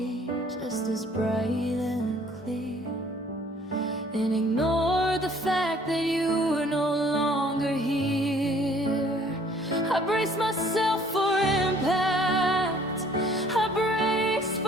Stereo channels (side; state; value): both; normal; correlation 0.57